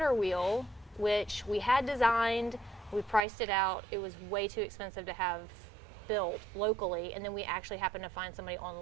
wheel, which we had designed, we priced it out, it was way too expensive to have built locally, and then we actually happened to find somebody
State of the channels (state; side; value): drops out; left; at 3.2 s